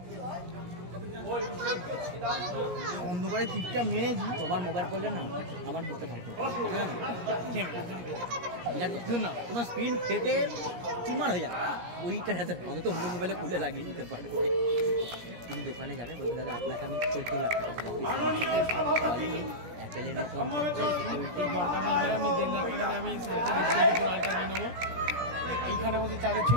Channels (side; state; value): left; late; 17 ms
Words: অন্ধকারে টিপটা মেরেছি। তোমার মোবাইল করলে না আমার বুঝতে পারতো না তোমার স্ক্রিন ফেটে চুমার হয়ে যাবে ওইটা অন্তত অন্য মোবাইলে খুলে লাগিয়ে দিতে পারবে। তুমি দোকানে যাবে বলবে দাদা আপনাকে আমি 14 লাখ টাকা অ্যাপেলের মতন সিকিউরিটি দরকার নেই ভাই, আমি 1.5 লাখ টাকাতে আমি আলটা নিয়ে নেবো, এইখানে বসে চাঁদের